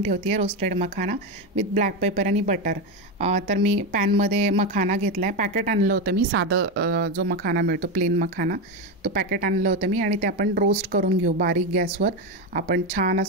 ठेवते आहे roasted makhana with black paper आणि बटर। तर मी पॅनमध्ये मखाना घेतला आहे, पॅकेट आणलं होतं मी, साधं जो मखाना मिळतो प्लेन मखाना, तो पॅकेट आणलं होतं मी आणि ते आपण रोस्ट करून घेऊ बारीक गॅसवर। आपण छान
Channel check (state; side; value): normal; both; correlation 0.13